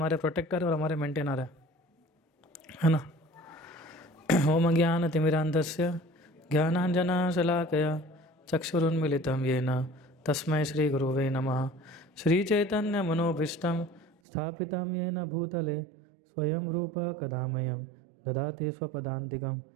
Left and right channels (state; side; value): drops out; left; at 14.1 s